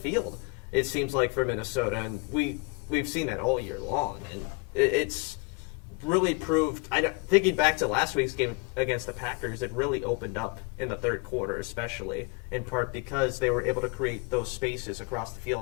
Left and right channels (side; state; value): right; quieter; 30.4 dB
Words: it seems like, for Minnesota. And we've seen that all year long. And it's really proved, thinking back to last week's game against the Packers, it really opened up in the third quarter, especially, in part because they were able to create those spaces across the